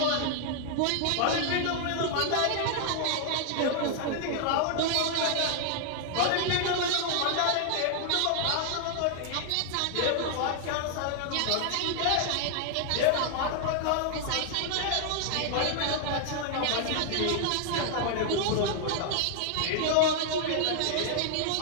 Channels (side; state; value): both; different; correlation 0.00